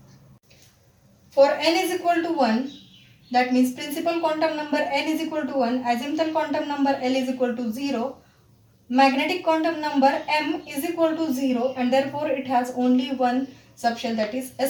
For n is equal to 1, that means principal quantum number n is equal to 1, azimuthal quantum number L is equal to 0, magnetic quantum number m is equal to 0, and therefore it has only one subshell, that is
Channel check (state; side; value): identical; both; correlation 1.00